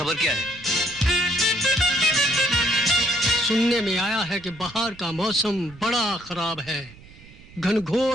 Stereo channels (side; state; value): right; noise; rumble, 21 dB below the sound